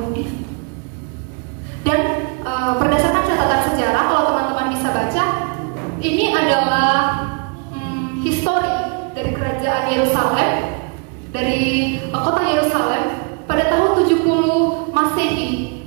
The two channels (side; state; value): left; quieter; 36.2 dB